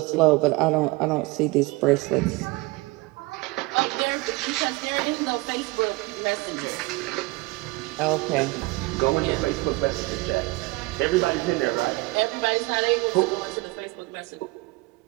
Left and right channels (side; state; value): left; quieter; 22.8 dB